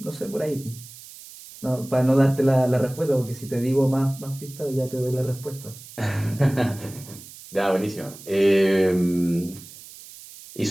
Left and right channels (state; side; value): noise; right; hiss, 17 dB below the sound